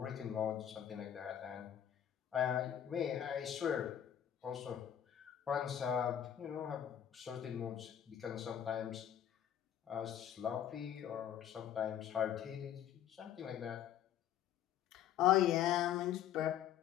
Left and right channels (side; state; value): right; quieter; 10.2 dB